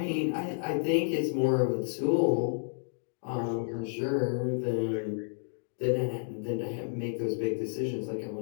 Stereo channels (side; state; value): right; silent; digital silence